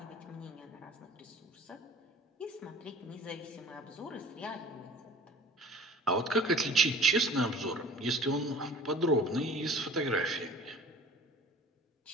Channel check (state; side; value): normal; both; correlation 0.45